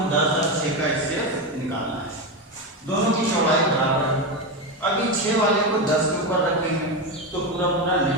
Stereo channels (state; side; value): normal; both; correlation 0.14